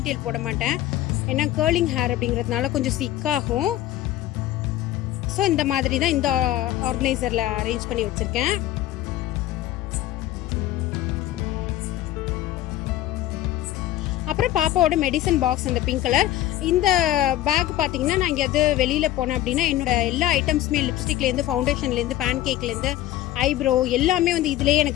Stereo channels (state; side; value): quieter; right; 14.2 dB